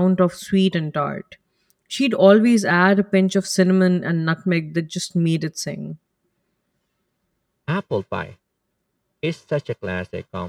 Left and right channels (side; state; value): both; identical; correlation 1.00